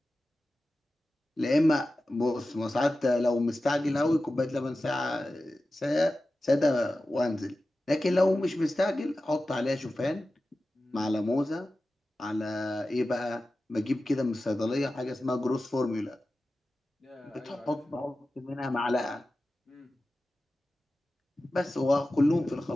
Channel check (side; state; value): both; normal; correlation 0.94